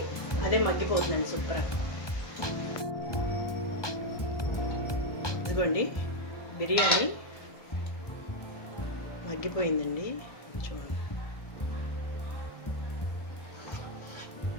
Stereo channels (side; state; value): right; late; 1.3 ms